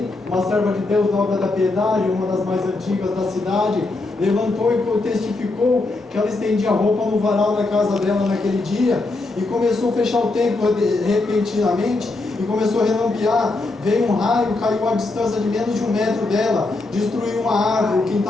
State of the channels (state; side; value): quieter; right; 3.2 dB